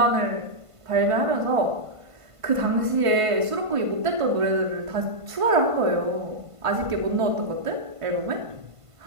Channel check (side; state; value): left; late; 1.5 ms